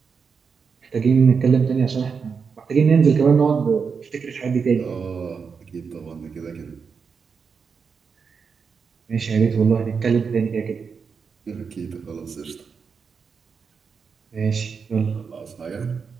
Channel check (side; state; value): left; quieter; 5.7 dB